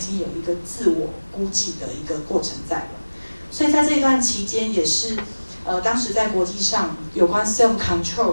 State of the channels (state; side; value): inverted; both; correlation -1.00